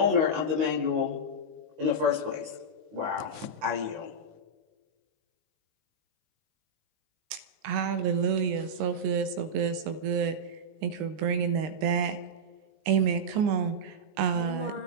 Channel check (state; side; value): late; left; 20 ms